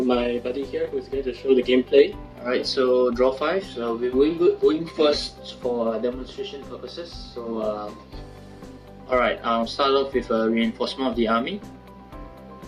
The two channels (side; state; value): both; identical; correlation 1.00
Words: my buddy here, who's going to show the gameplay. Alright, so draw 5. So we're going first for demonstration purposes. So alright, I'll start off with a reinforcement of the army.